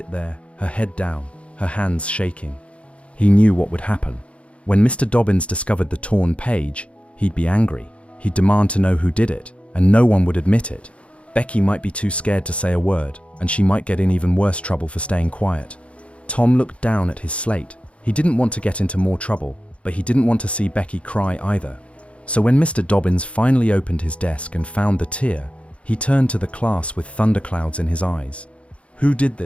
there, her head down, her hands shaking. He knew what would happen. When Mr. Dobbins discovered the torn page, he'd be angry. He'd demand to know who did it, and no one would admit it. Becky might be too scared to say a word, and she might get in even worse trouble for staying quiet. Tom looked down at his slate. He didn't want to get into more trouble, but he didn't want to see Becky cry either. So when Mr. Dobbins finally opened his desk and found the tear, He turned to the class with thunderclouds in his eyes. "Who did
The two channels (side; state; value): right; late; 0.061 ms